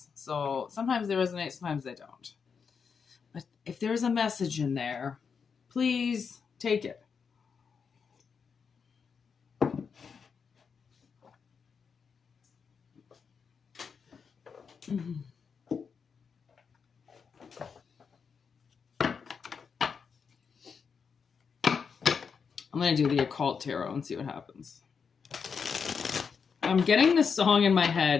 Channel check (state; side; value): quieter; right; 6.0 dB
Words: So sometimes they resonate, sometimes they don't. But if there's a message in there, please take it. Mm-hmm. I'm going to do the occult tarot and see what happens. I'm getting this song in my